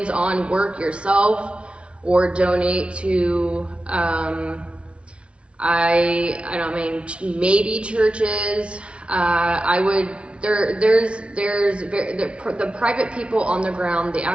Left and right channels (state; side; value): late; left; 0.059 ms